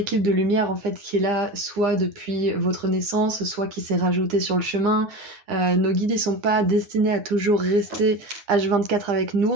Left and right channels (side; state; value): left; late; 9.8 ms